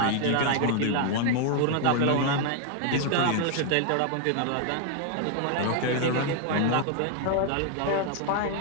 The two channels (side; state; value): both; different; correlation 0.00